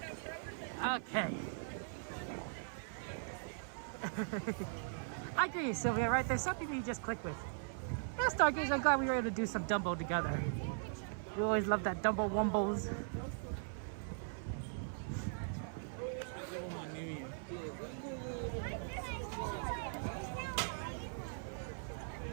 Okay. I agree, Sylvia, right? There's some people you just click with. Yeah, Stargaze, I'm glad we were able to do some Dumbo together. We always love that Dumbo Wumbos.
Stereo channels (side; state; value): left; silent; 51 dB below the other